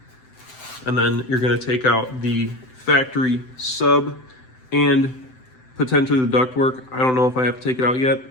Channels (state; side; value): late; right; 7.8 ms